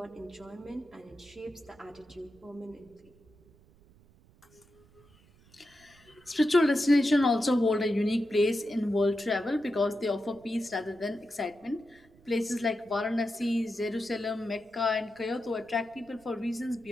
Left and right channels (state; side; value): noise; right; rumble, 28 dB below the sound